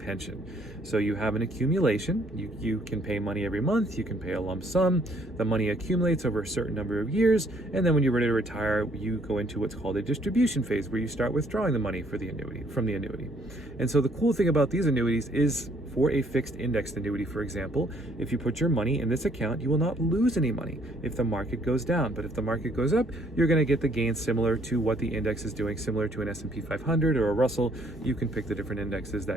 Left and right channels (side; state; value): both; normal; correlation 0.65